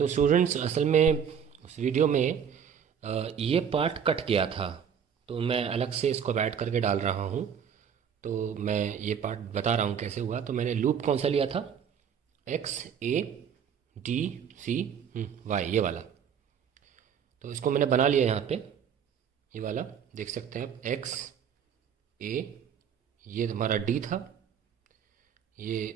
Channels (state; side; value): quieter; left; 7.8 dB